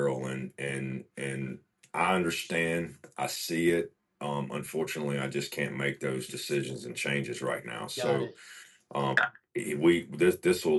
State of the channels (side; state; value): both; identical; correlation 1.00